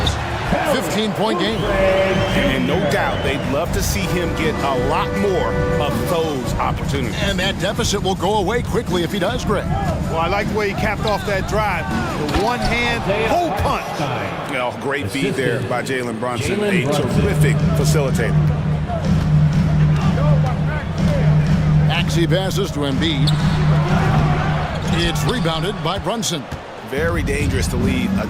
15-point game. And no doubt they'd love to see him get a lot more of those opportunities. And that deficit will go away quickly if he does, Greg. Well, I like the way he capped off that drive. The one-hand pull punch. Well, great feed there by Jalen Brunson. A terrific facilitator. Maxey passes to Embiid. It's rebounded by Brunson. Very dangerous to leave a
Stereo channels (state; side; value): identical; both; correlation 1.00